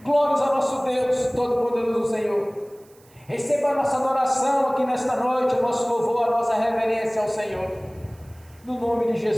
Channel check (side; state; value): right; noise; hiss, 29 dB below the sound